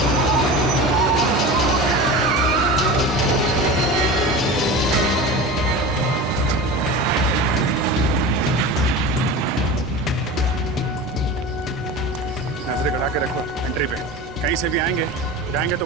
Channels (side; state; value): both; normal; correlation 0.31